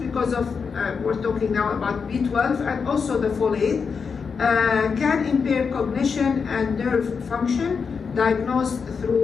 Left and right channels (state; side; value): quieter; right; 5.7 dB